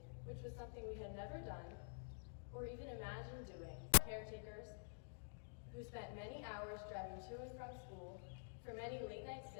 which was something we had never done or even imagined doing. Caretakers who spent many hours driving to and from school, for many late-night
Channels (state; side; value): silent; right; digital silence